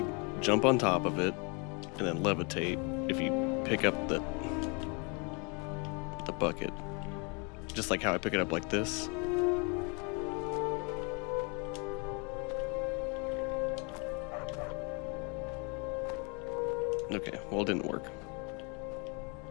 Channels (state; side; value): quieter; right; 32.8 dB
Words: jump on top of it and then levitate if you pick up the bucket. Just like how I pick it up like this. Okay, well, it didn't work.